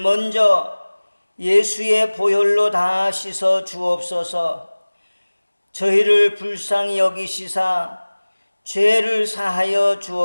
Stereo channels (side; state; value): both; inverted; correlation -1.00